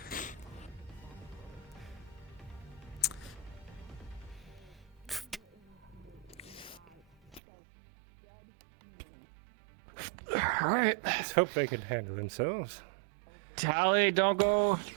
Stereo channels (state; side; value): drops out; left; at 7.4 s